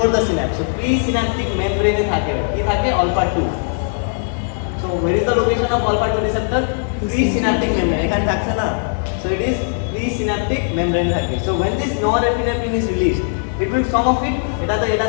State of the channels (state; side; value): silent; right; digital silence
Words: the synapse so presynaptic মেমব্রেনে থাকে কি থাকে alpha 2 so where is the location of alpha 2 receptor presynaptic membrane এখানে থাকছে না so it is presynaptic membrane থাকে so when this norepinephrine is released it will some of it এটা